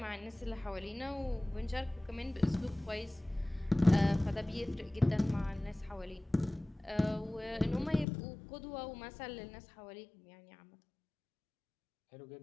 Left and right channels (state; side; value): drops out; right; at 8.1 s